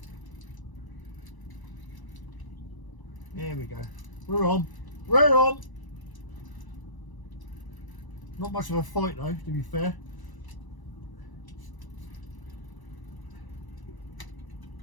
There we go. We're on. We're on. Not much of a fight though, to be fair.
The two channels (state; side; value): late; right; 1.0 ms